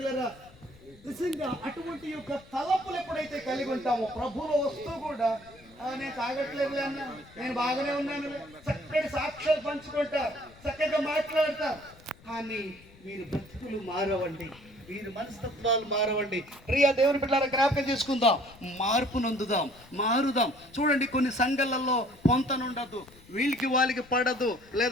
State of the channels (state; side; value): noise; left; rumble, 24 dB below the sound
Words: నిజంగా అటువంటి యొక్క తలపులు ఎప్పుడైతే కలిగి ఉంటామో ప్రభువులో వస్తూ కూడా నేను తాగట్లేదు అన్న, నేను బాగానే ఉన్నాను, చక్కటి సాక్ష్యాలు పంచుకుంటారు, చక్కగా మాట్లాడతారు. కానీ మీరు బ్రతుకులు మారవండి, మీరు మనస్తత్వాలు మారవండి. ప్రియ దేవుని బిడ్డలారా, జ్ఞాపకం చేసుకుందాం, మార్పు నొందుదాం, మారుదాం. చూడండి, కొన్ని సంఘాలలో పొంతనుండదు, వీళ్ళకి వాళ్ళకి పడదు,